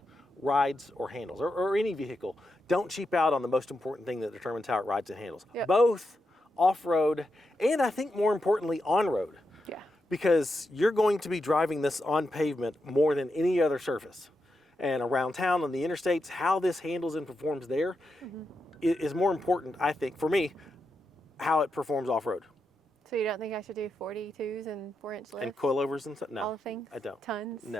rides or handles, or any vehicle. Don't cheap out on the most important thing that determines how it rides and handles. Yep. Both off-road and I think more importantly on-road. Yeah. Because you're going to be driving this on pavement more than any other surface. And around town on the interstates, how this handles and performs there is more important, I think, for me, how it performs off-road. So you don't think I should do 42s and 4-inch lifts? And coilovers and stuff? No, All the things? I don't. Tons?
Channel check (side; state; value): both; normal; correlation 0.86